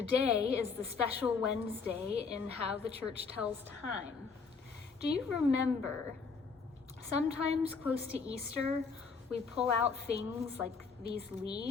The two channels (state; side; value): quieter; right; 5.0 dB